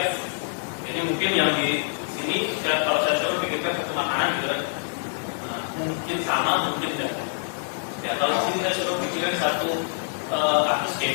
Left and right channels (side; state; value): right; silent; digital silence